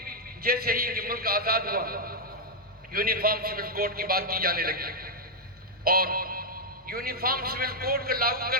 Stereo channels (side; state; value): both; normal; correlation -0.03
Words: جیسے ہی کہ ملک آزاد ہوا، یونیفارم سول کوڈ کی بات کی جانے لگی، اور یونیفارم سول کوڈ کو لاگو